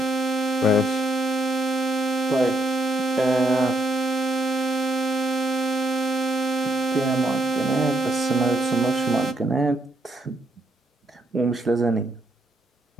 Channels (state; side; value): normal; both; correlation 0.75